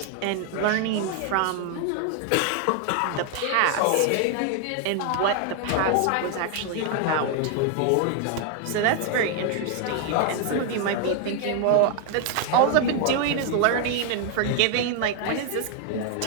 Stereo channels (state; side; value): different; both; correlation 0.00